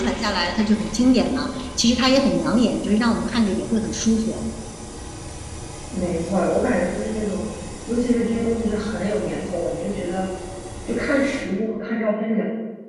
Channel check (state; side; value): identical; both; correlation 1.00